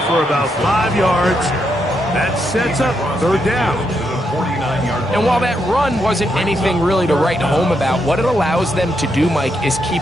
for about 5 yards. That sets up 3rd down. And while that run wasn't anything really to write home about, what it allows them to do, Mike, is keep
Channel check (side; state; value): both; normal; correlation 0.80